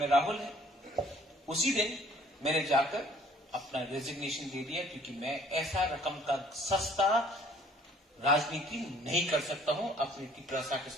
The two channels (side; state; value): both; normal; correlation 0.57